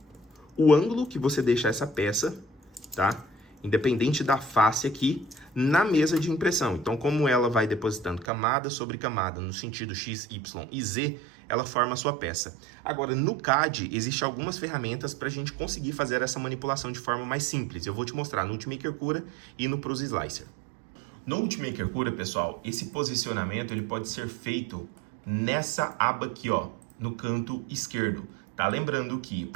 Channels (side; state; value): left; drops out; at 8.2 s